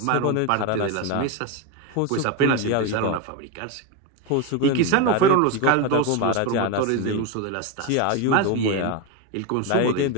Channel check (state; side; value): different; both; correlation 0.03